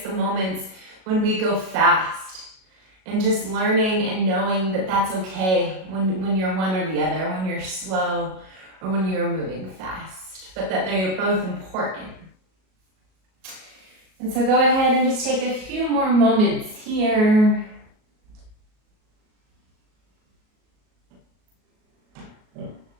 the moments when we go fast, and just learning and knowing that that's okay when you're one or the other, when you're slow or when you're moving fast, but that they're both important. And so go ahead and just take a few more moments here.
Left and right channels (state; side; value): late; left; 37 ms